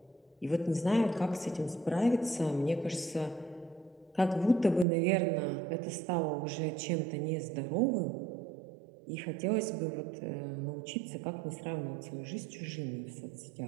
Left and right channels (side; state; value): left; drops out; at 4.9 s